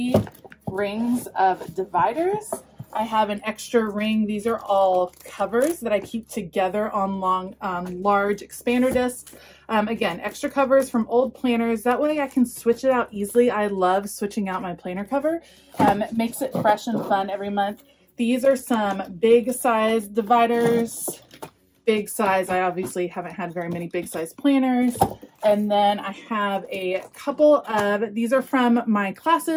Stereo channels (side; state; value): both; identical; correlation 1.00